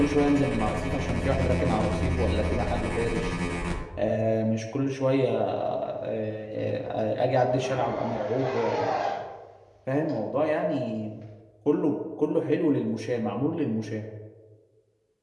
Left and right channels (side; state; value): both; identical; correlation 1.00